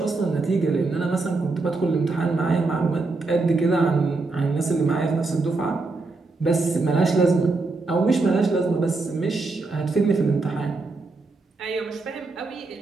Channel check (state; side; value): quieter; left; 3.6 dB